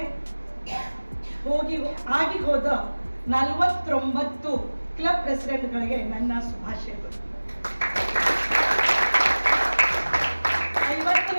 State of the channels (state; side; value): inverted; both; correlation -1.00